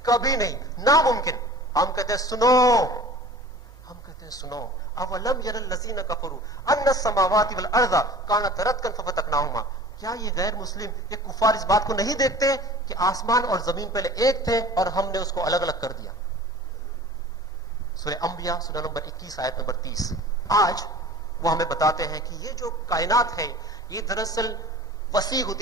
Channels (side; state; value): both; normal; correlation 0.42